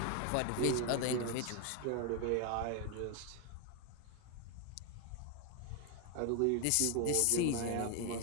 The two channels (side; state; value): both; different; correlation 0.01